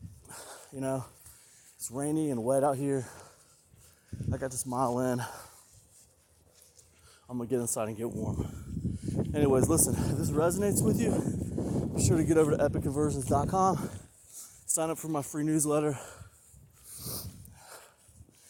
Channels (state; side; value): identical; both; correlation 1.00